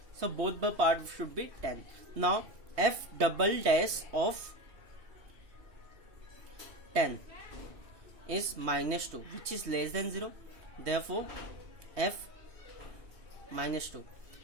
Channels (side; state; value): left; late; 3.2 ms